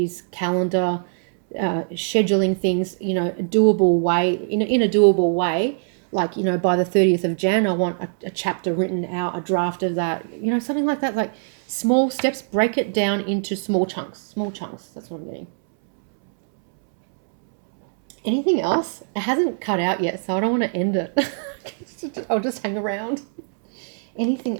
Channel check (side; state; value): left; silent; 64 dB below the other